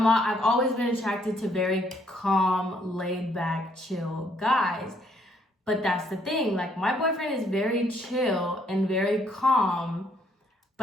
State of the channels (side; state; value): both; normal; correlation 0.69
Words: always been attracted to very calm, laid back, chill guys. But that's the thing, like, my boyfriend is very chill and very calm,